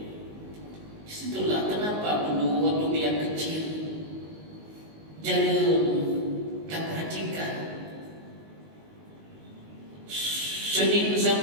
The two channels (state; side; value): late; left; 19 ms